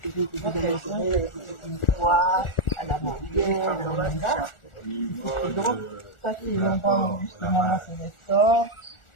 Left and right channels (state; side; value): late; right; 1.4 ms